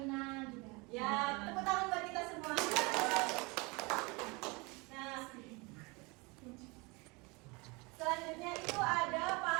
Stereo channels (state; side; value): quieter; left; 27.1 dB